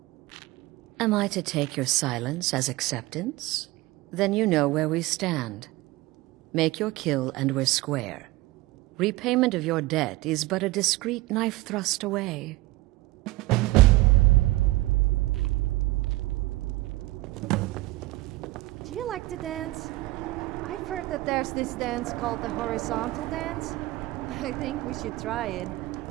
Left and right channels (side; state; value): left; quieter; 19.2 dB